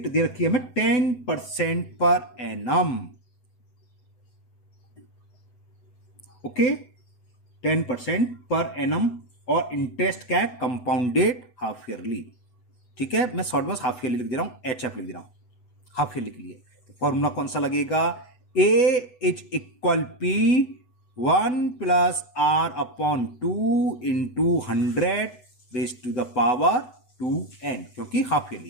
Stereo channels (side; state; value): right; late; 8.0 ms